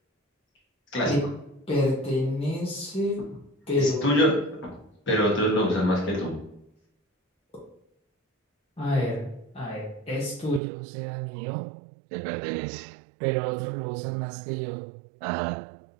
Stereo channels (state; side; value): drops out; left; at 10.6 s